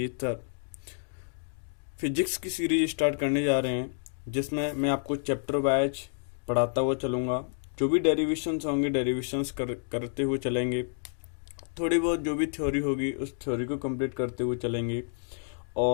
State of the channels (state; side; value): silent; right; digital silence